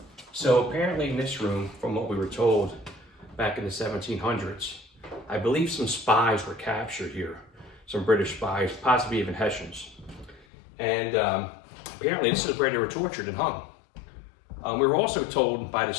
So apparently in this room, from what we were told back in the 1700s, I believe some spies were captured here, some British spies, possibly even Hessians. And apparently this is where they were tortured and hung. We were also told by the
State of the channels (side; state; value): right; drops out; at 10.5 s